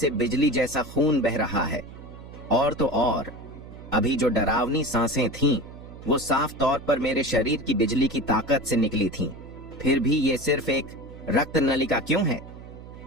बिजली जैसा खून बह रहा है। और तो और अभी जो डरावनी सांसें थीं, वो साफ तौर पर मेरे शरीर की बिजली की ताकत से निकली थीं। फिर भी ये सिर्फ एक रक्त नलिका क्यों है?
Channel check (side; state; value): right; noise; hum, 15 dB below the sound